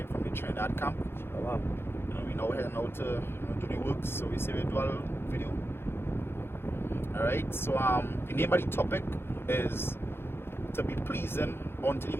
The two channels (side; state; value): right; late; 0.11 ms